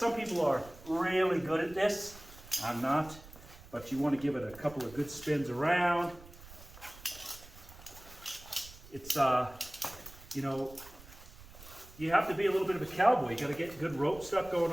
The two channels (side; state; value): right; noise; rumble, 19 dB below the sound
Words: people are really good at this. I'm not, but you want to give it a couple of good spins around. It's, you have to be a little bit of a cowboy. You got to get good rope stuff going